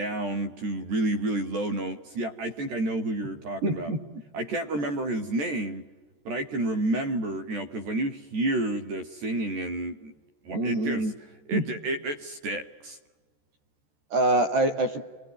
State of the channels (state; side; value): late; left; 14 ms